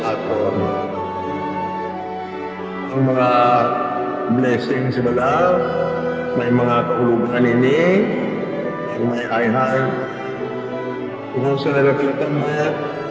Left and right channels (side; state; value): both; identical; correlation 1.00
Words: aton? Ang mga blessings wala, may mga kahulugan ini, may ayhan. Kung sa nagagalitan mo,